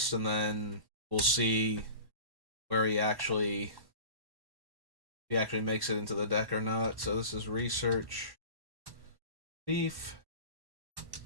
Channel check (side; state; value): left; late; 1.1 ms